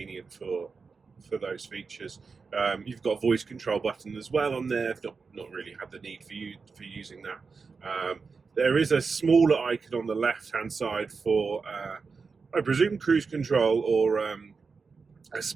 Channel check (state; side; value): quieter; left; 4.9 dB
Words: for those features. You've got a voice control button as well on there. I've not really had the need for using that. There is a smaller icon on the left hand side for I presume cruise control or a